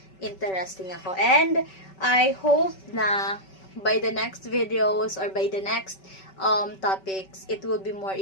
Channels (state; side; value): late; right; 5.2 ms